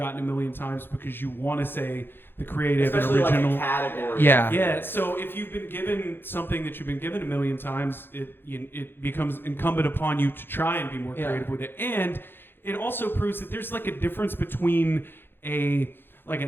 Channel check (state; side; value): late; right; 0.10 ms